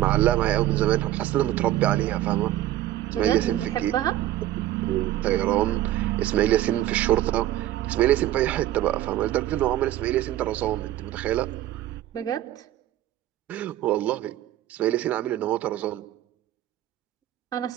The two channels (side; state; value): left; quieter; 13.7 dB